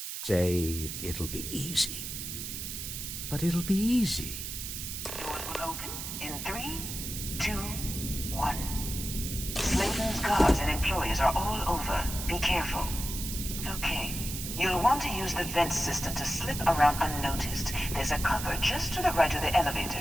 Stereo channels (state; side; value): noise; right; hiss, 6 dB below the sound